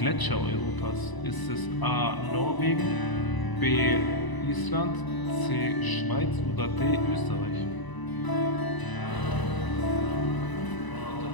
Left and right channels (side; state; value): right; late; 1.0 ms